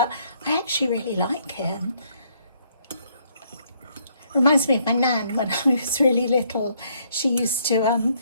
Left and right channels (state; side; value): inverted; both; correlation -0.69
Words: I actually really like it. Reminds me of my nan when I was really little. She used to